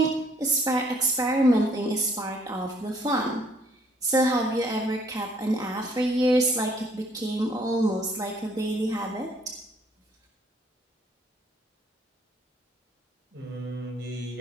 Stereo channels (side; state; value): both; normal; correlation 0.63